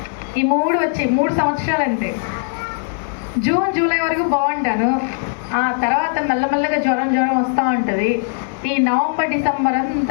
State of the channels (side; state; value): right; silent; digital silence